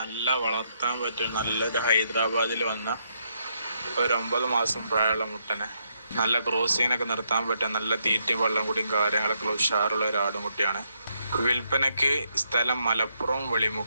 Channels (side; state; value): both; inverted; correlation -0.77